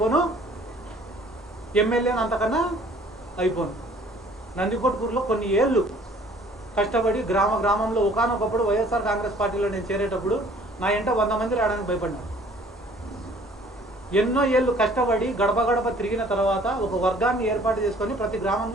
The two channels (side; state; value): both; normal; correlation 0.55